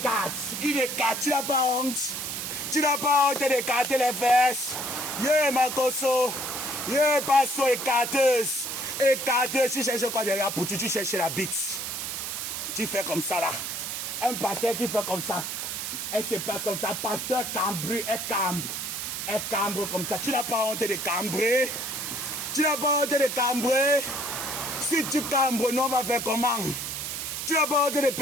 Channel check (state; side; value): noise; right; hiss, 4 dB below the sound